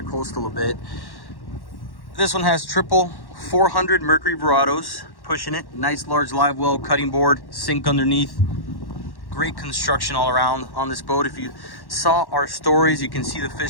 a bit. This one has triple 400 Mercury Verados, pushing it. Nice large live well, cutting board, sink underneath. Great construction all around on this boat. If you saw our stories, you can see the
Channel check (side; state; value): right; late; 1.1 ms